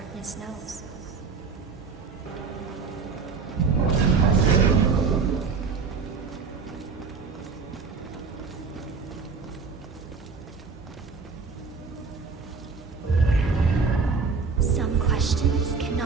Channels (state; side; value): quieter; left; 5.0 dB